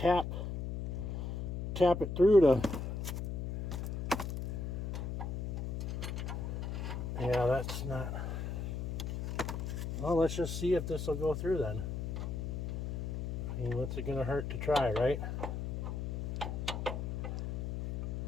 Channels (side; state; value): left; noise; hum, 3 dB below the sound